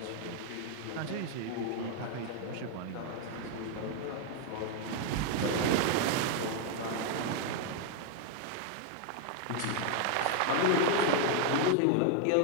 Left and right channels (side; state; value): both; different; correlation 0.00